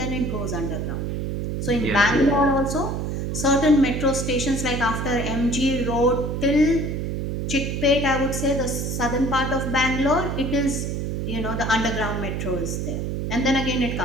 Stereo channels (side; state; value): right; noise; hum, 2 dB below the sound